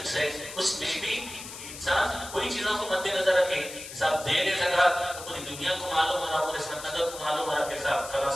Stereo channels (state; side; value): noise; left; hiss, 12 dB below the sound